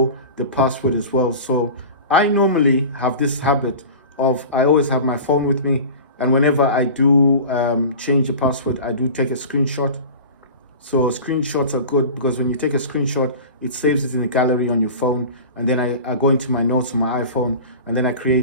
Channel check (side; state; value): both; inverted; correlation -0.35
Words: the password as well. So I normally have this habit of, I always have my phone with me, and whenever I do change the password, I do take a screenshot. So screenshots are good because when you take a screenshot, it saves it in the gallery on your phone, and then I go into my notes on my iPhone, and then I